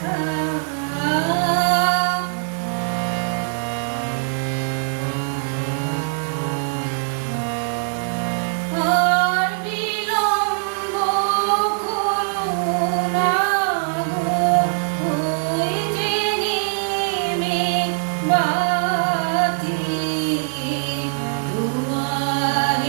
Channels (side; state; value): left; silent; digital silence